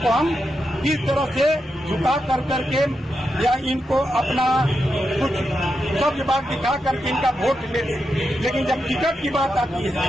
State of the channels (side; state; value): both; normal; correlation 0.86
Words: हम किस तरह से झुका कर करके या इनको अपना कुछ सब बात दिखा करके इनका वोट ले लें। लेकिन जब टिकट की बात आती